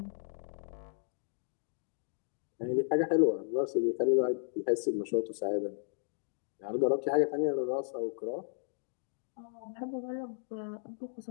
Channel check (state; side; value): silent; right; digital silence